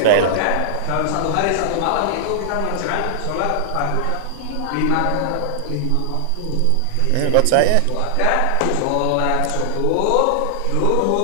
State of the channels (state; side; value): different; both; correlation -0.01